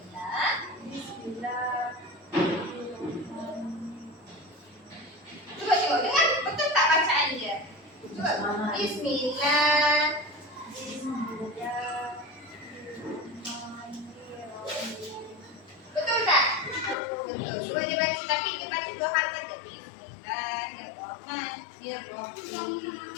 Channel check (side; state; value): right; drops out; at 16.9 s